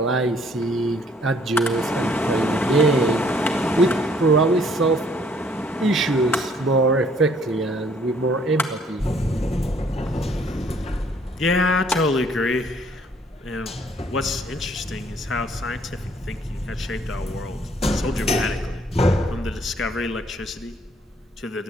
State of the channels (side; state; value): both; normal; correlation 0.62